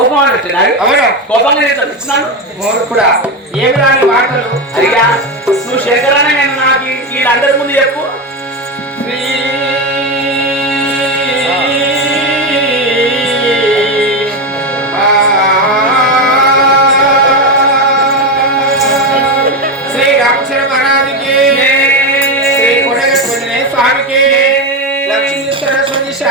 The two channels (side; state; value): both; normal; correlation 0.13